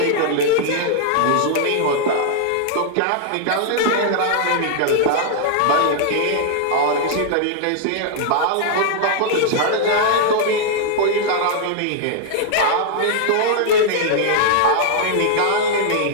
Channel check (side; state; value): both; different; correlation -0.01